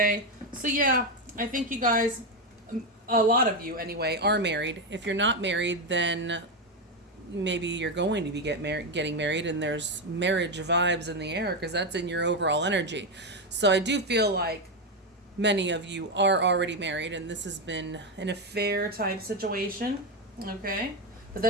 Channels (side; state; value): both; normal; correlation 0.09